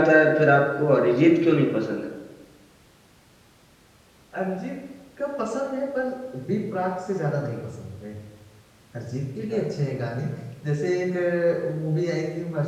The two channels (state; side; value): identical; both; correlation 1.00